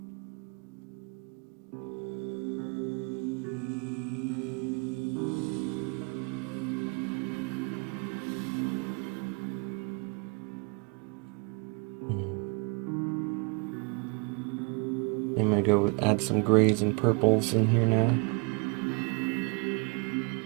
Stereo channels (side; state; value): left; quieter; 32.9 dB